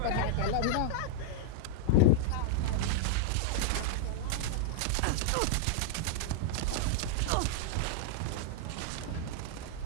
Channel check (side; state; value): both; different; correlation -0.01